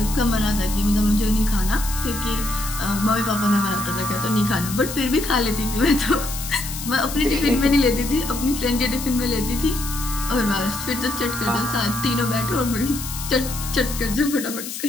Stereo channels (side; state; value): left; noise; hiss, 8 dB below the sound